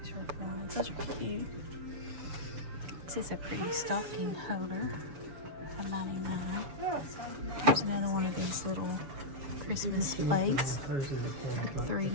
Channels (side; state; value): left; late; 6.9 ms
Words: are bronze. Those are cute. This is a pretty stocking holder. $1.99. Here's another one of these little Christmas plates.